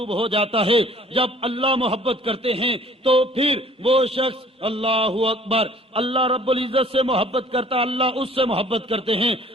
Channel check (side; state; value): both; normal; correlation 0.53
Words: ہو جاتا ہے۔ جب اللہ محبت کرتے ہیں تو پھر وہ شخص اللہ اکبر، اللہ رب العزت سے محبت کرتا، اللہ اس سے محبت کرتے ہیں۔